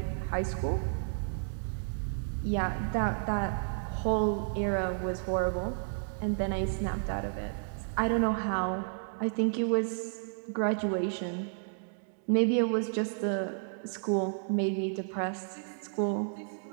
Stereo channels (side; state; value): left; silent; digital silence